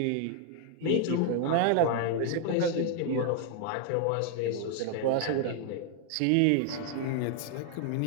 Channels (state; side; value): different; both; correlation 0.00